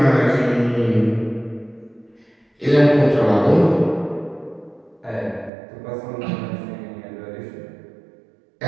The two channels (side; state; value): left; drops out; at 5.5 s